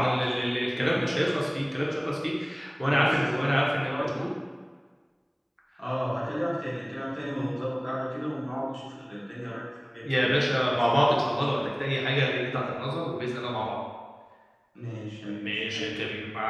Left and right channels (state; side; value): identical; both; correlation 1.00